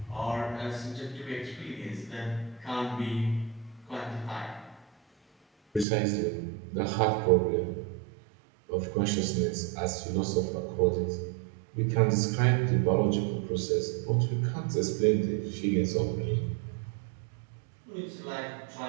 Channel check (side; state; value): left; drops out; at 5.9 s